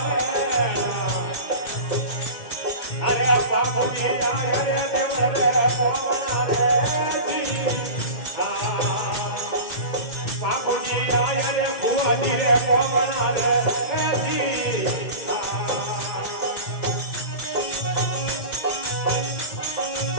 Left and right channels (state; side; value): late; right; 2.1 ms